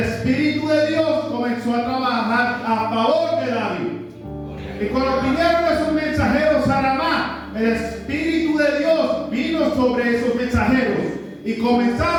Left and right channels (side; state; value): both; identical; correlation 1.00